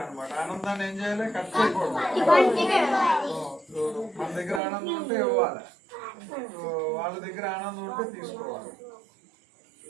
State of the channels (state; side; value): drops out; left; at 4.6 s